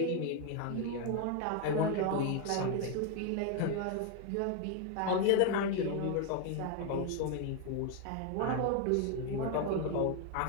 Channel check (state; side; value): different; both; correlation 0.01